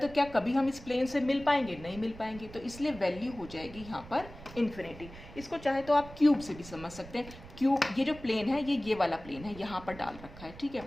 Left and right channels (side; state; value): right; noise; rumble, 16 dB below the sound